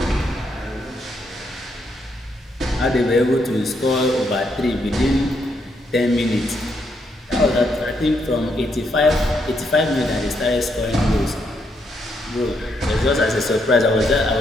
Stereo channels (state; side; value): normal; both; correlation 0.77